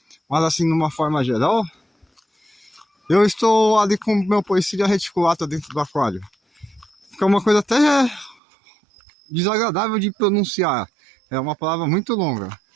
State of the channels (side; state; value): left; drops out; at 8.3 s